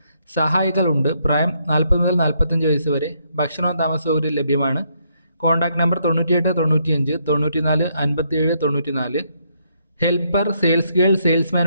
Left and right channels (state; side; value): inverted; both; correlation -0.74